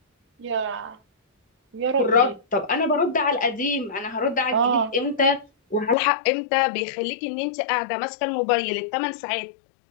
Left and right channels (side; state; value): right; drops out; at 6.0 s